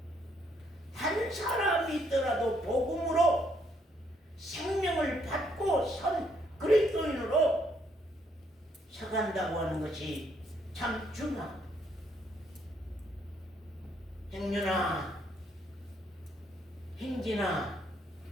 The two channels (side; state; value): both; normal; correlation 0.71